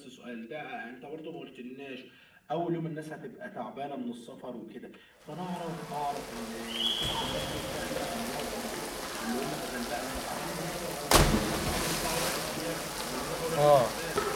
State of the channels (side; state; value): both; identical; correlation 1.00